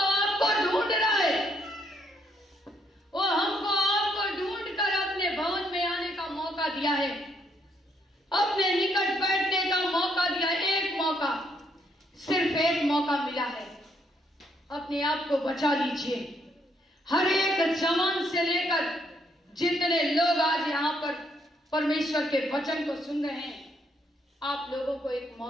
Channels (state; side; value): normal; both; correlation 0.73